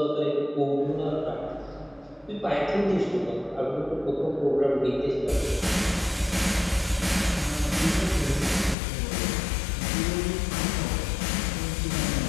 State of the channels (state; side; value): drops out; right; at 8.8 s